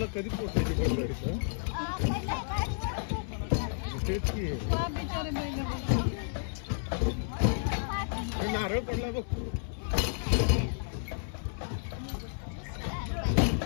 कधी पोहोचायची बैलगाडीचं? तेच की नारळ पडला बघ.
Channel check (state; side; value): silent; right; 57 dB below the other